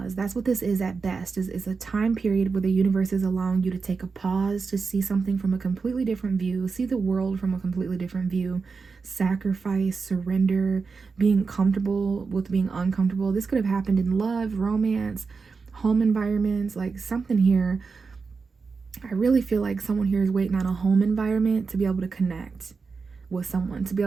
That's what this is at best. Is a time period where the universe is allowing you to take a pause to see something from a completely different view, see the world from a completely different view, sacrifice, surrender, being comfortable with being uncomfortable. This could have happened in love, romance, home environments, like something here. I really feel like someone here is waiting on a home environment to be able to connect with someone, to be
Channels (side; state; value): left; quieter; 4.8 dB